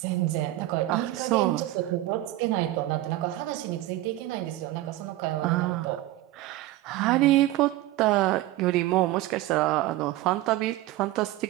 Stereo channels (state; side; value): quieter; left; 16.1 dB